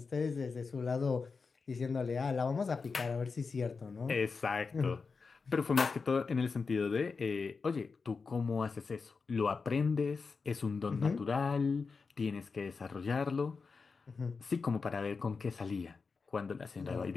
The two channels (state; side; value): quieter; right; 4.8 dB